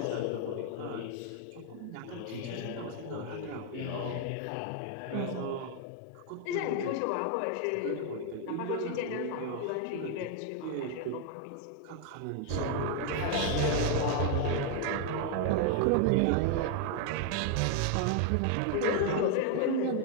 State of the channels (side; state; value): both; different; correlation 0.00